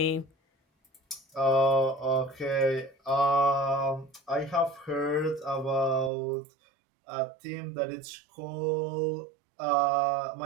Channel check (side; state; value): left; drops out; at 6.1 s